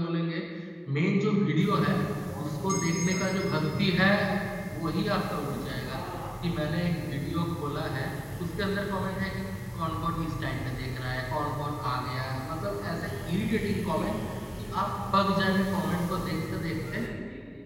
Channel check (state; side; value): identical; both; correlation 1.00